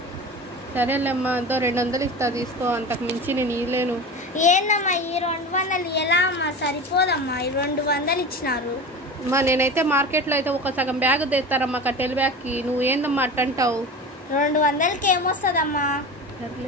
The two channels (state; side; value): normal; both; correlation 0.30